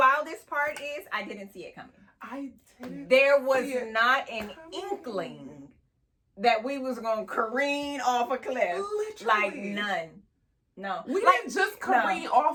part is I didn't see it coming. I didn't. There was not an inkling that we was gonna careen off a cliff. Literally. Like none. No. We didn't just careen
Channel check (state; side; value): identical; both; correlation 1.00